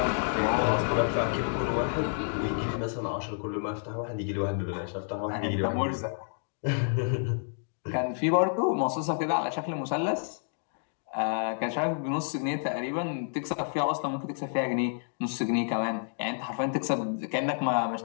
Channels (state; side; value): silent; right; digital silence